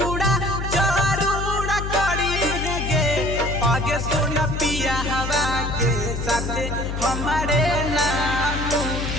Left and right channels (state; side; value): noise; left; hum, 4 dB below the sound